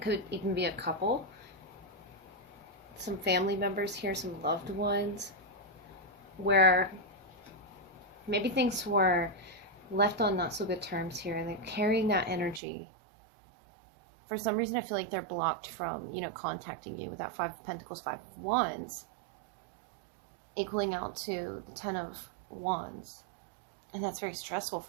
even be a couple, some family members here, some loved ones, where maybe things were left on not so good terms here, and they're carrying that energy. For some reason, I feel like they're blocked from, contacting you with that Five of Pentacles, Five of Wands, equaling out to the Ten of Wands. And that's very stressful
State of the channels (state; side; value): drops out; left; at 12.6 s